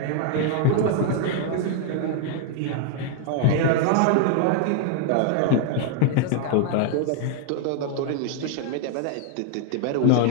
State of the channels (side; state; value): both; different; correlation 0.00